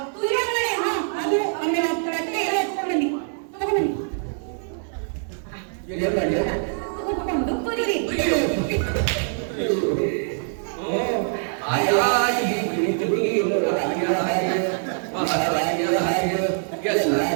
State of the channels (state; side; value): silent; left; 63 dB below the other